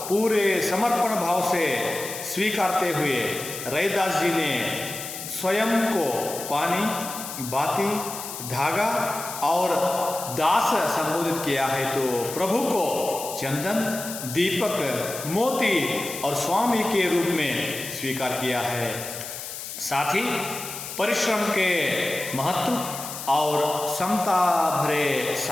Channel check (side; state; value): left; noise; hiss, 9 dB below the sound